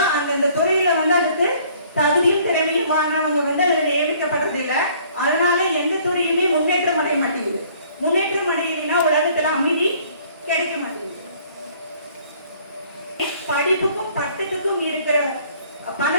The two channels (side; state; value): both; inverted; correlation -0.58